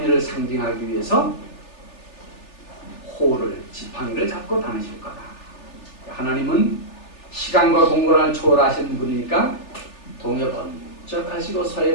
상징하기 위해서 호를 지팡이를 잡고 다니실 거다. 하나님은 시간과 공간을 초월하신 분이니까 동에 번쩍 하시고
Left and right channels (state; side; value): late; right; 3.4 ms